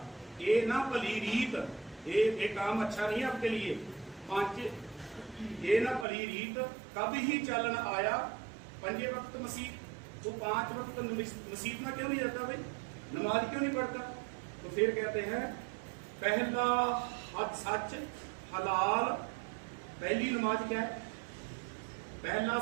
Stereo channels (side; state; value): left; drops out; at 6.1 s